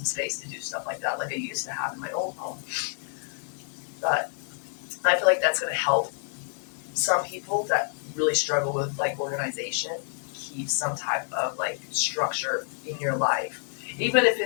space to do stuff like that like I used to have in my old home. But I feel like that's going to help some people that really struggle with like organization keep some type of like structure in your life. Even if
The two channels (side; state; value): right; silent; 59 dB below the other